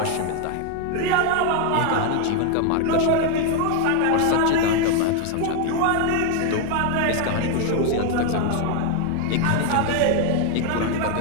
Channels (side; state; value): both; different; correlation 0.01